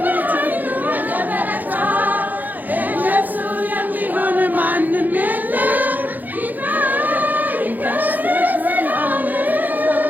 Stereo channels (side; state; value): left; late; 0.084 ms